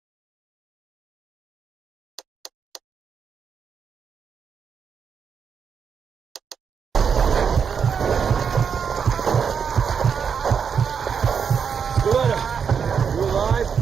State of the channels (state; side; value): quieter; left; 6.8 dB